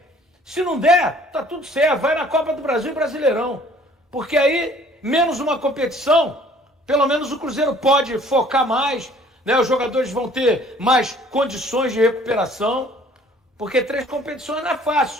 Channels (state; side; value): normal; both; correlation 0.55